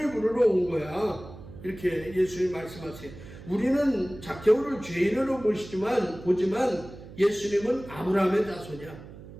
부르러 온 거야. 이렇게 예수님 말씀하세요. 우리는 zakhe오를 죄인으로 보지만 예수님은 아브라함의 자손이야.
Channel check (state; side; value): noise; right; hum, 16 dB below the sound